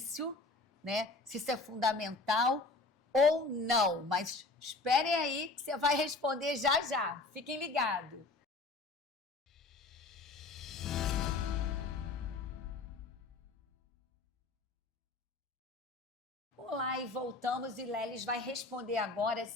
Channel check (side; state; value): right; quieter; 3.4 dB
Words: né? Se isso é fundamental ou não. Mas esperem aí que você vai responder já já. Fiquem ligados. Olá, e voltamos, e Lelis vai responder agora